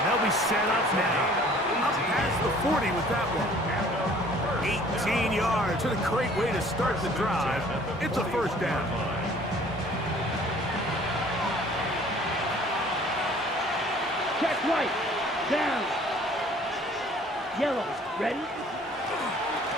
they'll be set up now. Up past the 40 with that one. 18 yards. What a great way to start the drive. It's a 1st down. Check right. Down. Yellow. Ready?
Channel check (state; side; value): normal; both; correlation 0.53